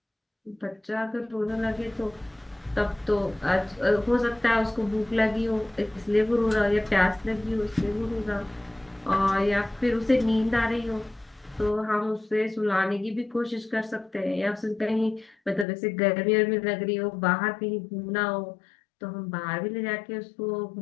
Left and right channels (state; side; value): drops out; right; at 15.7 s